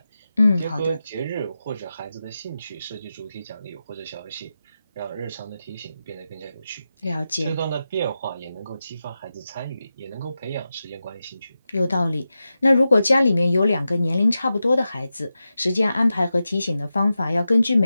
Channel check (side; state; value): both; inverted; correlation -0.91